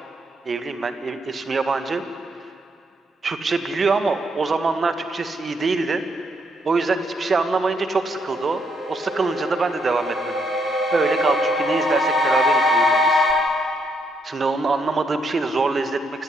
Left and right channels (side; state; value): both; normal; correlation 0.75